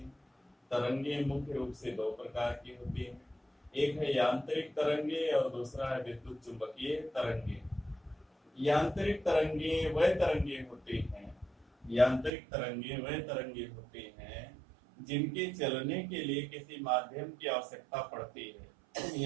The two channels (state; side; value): drops out; left; at 12.3 s